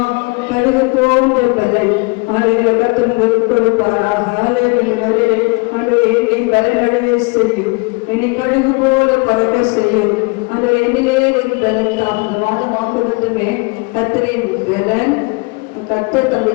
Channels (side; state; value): right; quieter; 29.6 dB